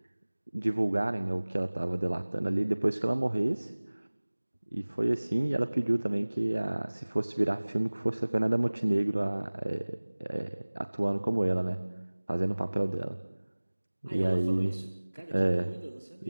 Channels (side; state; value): both; inverted; correlation -1.00